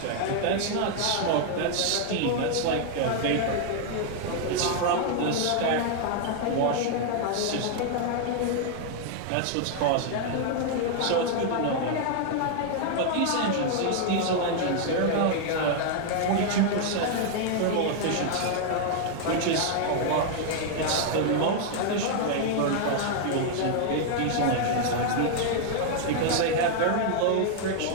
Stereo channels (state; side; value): different; both; correlation 0.00